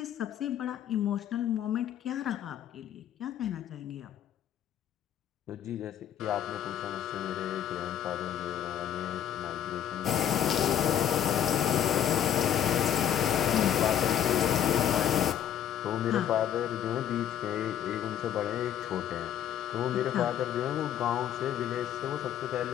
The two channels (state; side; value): quieter; right; 10.1 dB